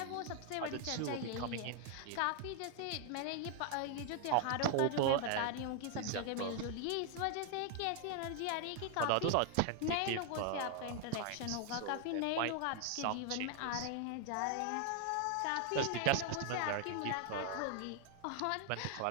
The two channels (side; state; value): both; different; correlation 0.00